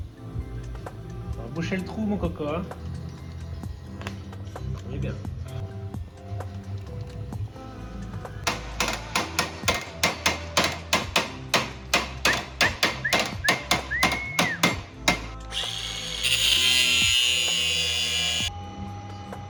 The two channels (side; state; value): both; identical; correlation 1.00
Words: On va boucher le trou, mon coco. Hein. On est bien.